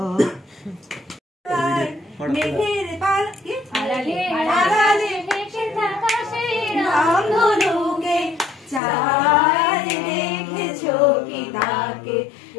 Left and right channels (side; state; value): right; drops out; at 8.8 s